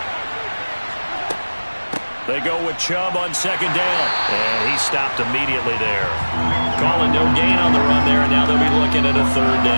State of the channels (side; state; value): both; inverted; correlation -1.00